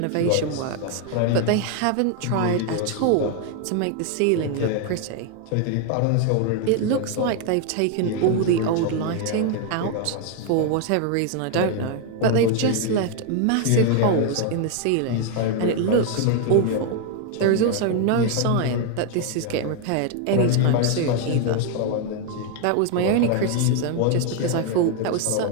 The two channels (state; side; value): different; both; correlation 0.01